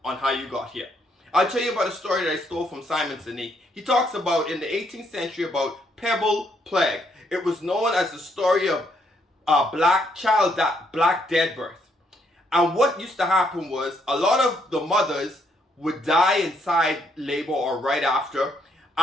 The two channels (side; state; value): both; normal; correlation 0.72